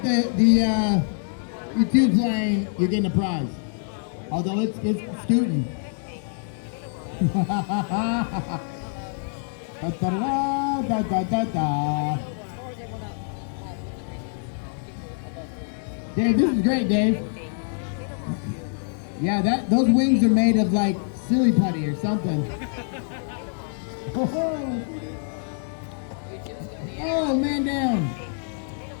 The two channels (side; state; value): right; silent; digital silence